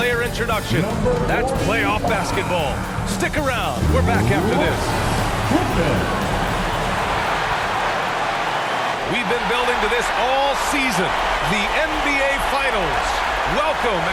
introduction. That's playoff basketball. Stick around. We're back after this. We've been building to this all season, the NBA Finals. Welcome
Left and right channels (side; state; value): both; identical; correlation 1.00